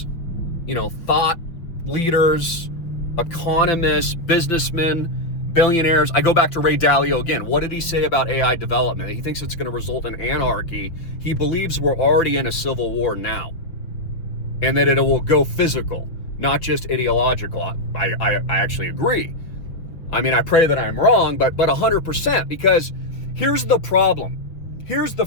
thought leaders, economists, businessmen, billionaires. I go back to Ray Dalio again. What did he say about AI development? He thinks it's going to result in anarchy. He believes we're already in a civil war now, and that it will go physical, not just ideological. I actually agree. I mean, I pray that I'm wrong, but 100%, because here's the problem. Here's the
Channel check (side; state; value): right; late; 5.7 ms